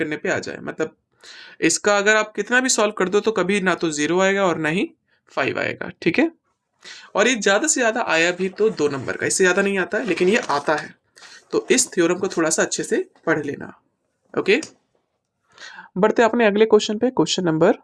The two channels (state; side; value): identical; both; correlation 1.00